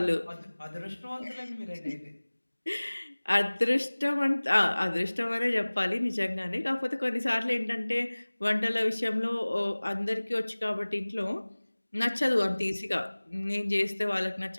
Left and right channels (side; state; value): both; inverted; correlation -1.00